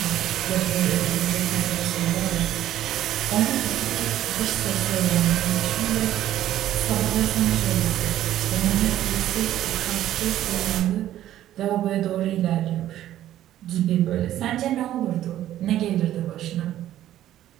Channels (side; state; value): left; quieter; 12.7 dB